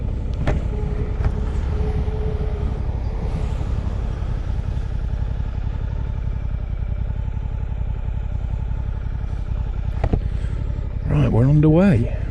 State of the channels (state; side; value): identical; both; correlation 1.00